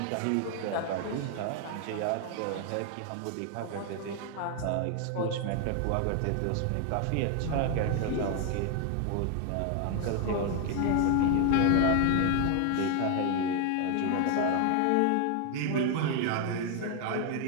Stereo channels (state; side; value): different; both; correlation 0.01